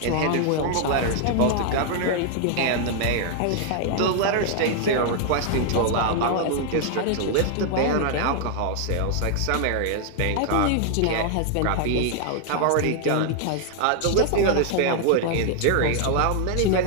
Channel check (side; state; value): both; different; correlation 0.00